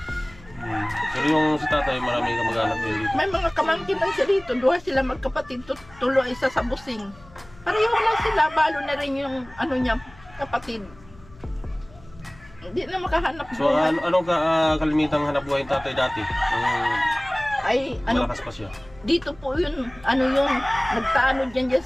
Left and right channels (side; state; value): left; noise; hum, 23 dB below the sound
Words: Pero yung si tatay, marami kamag-anak dito. May mga kamangkin lang siya dito, duha sila magkapatid, tulo isa sa busing. Pareho lang sila, balo na rin yung niya, kapatid. Hindi na makahanap So, buhay. anong kalimitang hanap buhay ng tatay dati? Ay, Malakas pa siya. dito po yun, nagtaano dyan